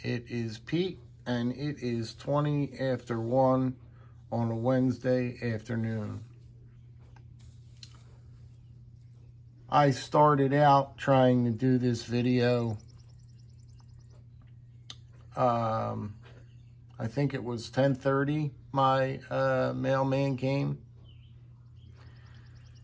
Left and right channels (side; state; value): both; identical; correlation 1.00